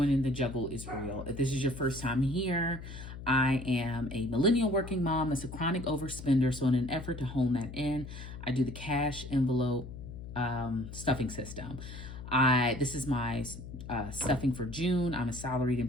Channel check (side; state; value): left; noise; hum, 11 dB below the sound